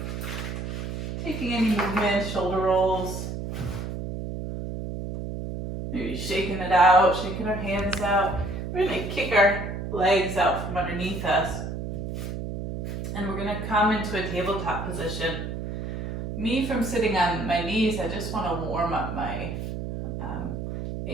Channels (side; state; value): right; noise; hum, 5 dB below the sound